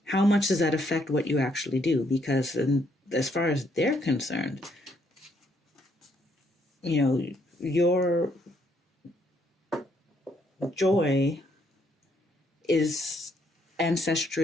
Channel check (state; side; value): normal; both; correlation 0.71